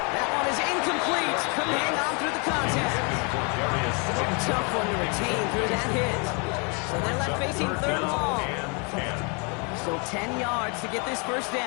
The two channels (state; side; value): quieter; right; 33.8 dB